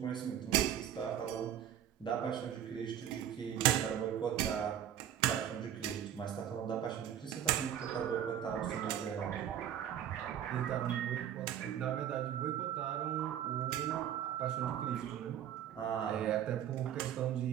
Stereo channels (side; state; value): left; quieter; 10.2 dB